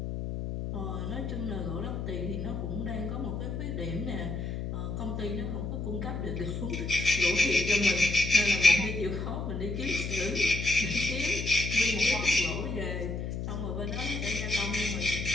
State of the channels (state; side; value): noise; left; hum, 4 dB below the sound